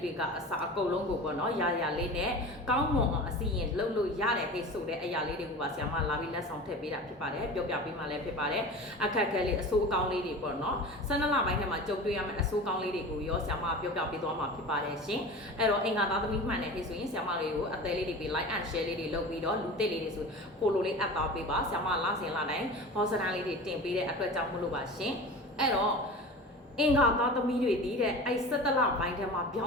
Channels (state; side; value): normal; both; correlation 0.34